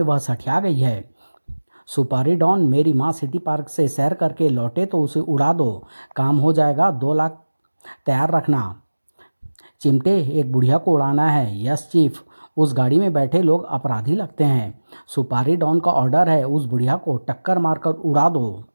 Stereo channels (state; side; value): inverted; both; correlation -1.00